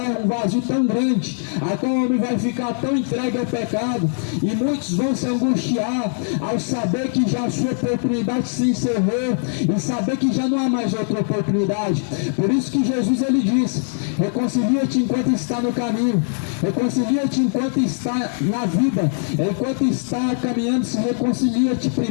um vazio tão grande, a qual o homem vai ficar tão entregue ao pecado, e muitos vão se angustiar ao saber que já a sua oportunidade se encerrou, e saber que já não há mais outra oportunidade. Por isso que Jesus ele diz: reconcilia-te enquanto está no caminho, reconcilia-te enquanto está na vida, enquanto está caminhando, se reconcilia-te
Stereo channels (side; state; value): right; silent; 65 dB below the other